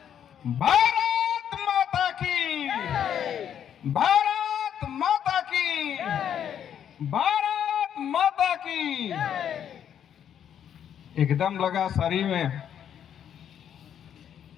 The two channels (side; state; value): right; quieter; 9.2 dB